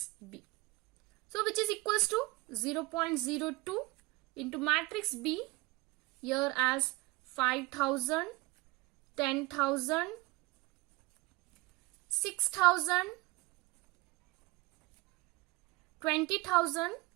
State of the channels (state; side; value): quieter; left; 22.7 dB